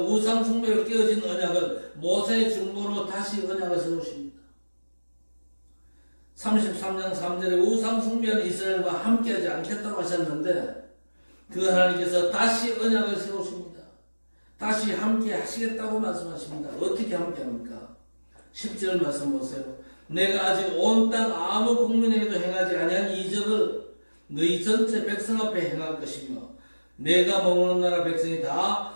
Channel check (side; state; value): both; inverted; correlation -1.00